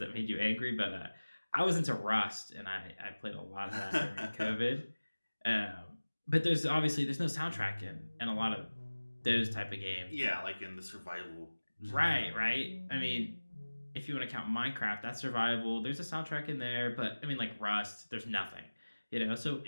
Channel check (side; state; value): both; inverted; correlation -1.00